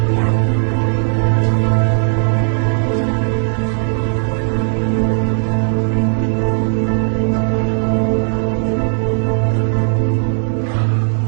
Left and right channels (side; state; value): left; silent; digital silence